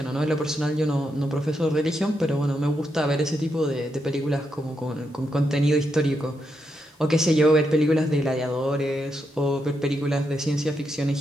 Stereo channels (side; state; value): both; normal; correlation 0.82